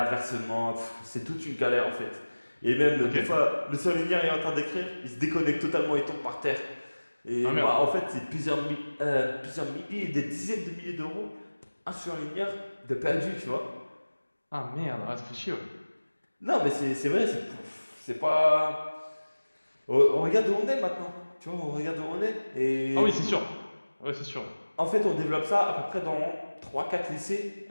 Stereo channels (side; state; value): both; inverted; correlation -1.00